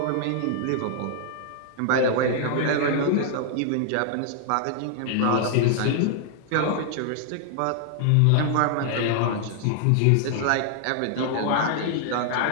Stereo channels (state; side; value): different; both; correlation 0.00